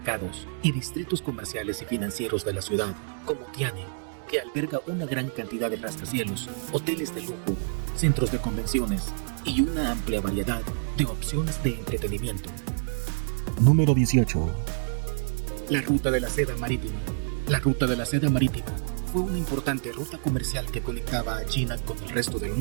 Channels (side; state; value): left; silent; digital silence